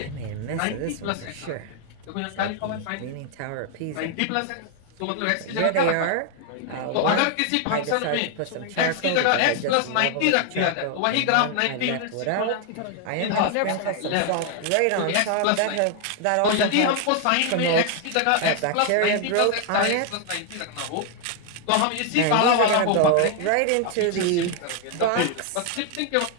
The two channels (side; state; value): both; different; correlation 0.00